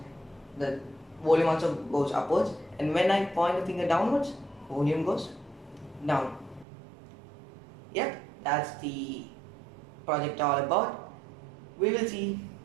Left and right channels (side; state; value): left; drops out; at 6.7 s